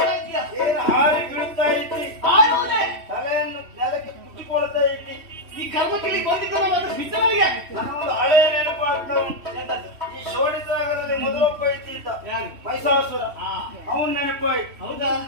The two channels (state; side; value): late; left; 3.1 ms